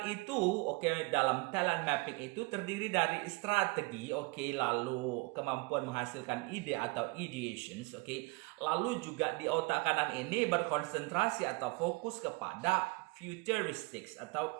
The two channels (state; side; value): quieter; left; 26.0 dB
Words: itu, oke, dalam talent mapping itu terdiri dari strategi, oke, lalu kemampuan menghasilkan ide atau ideations, oke. Lalu juga di otak kanan ini berkonsentrasi atau fokus kepada futuristics